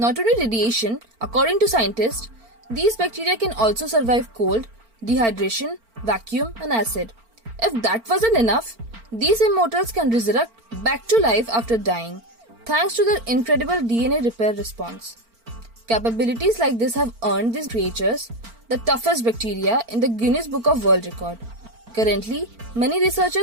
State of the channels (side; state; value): left; late; 4.4 ms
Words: only radiation, according to scientists, these bacteria can also survive cold, dehydration, vacuum, and acid. If that wasn't enough, these immortals can resurrect back to life after dying, thanks to their incredible DNA repair response. Capabilities like this have earned these creatures the toughest bacteria in the Guinness Book of World Record. Currently, many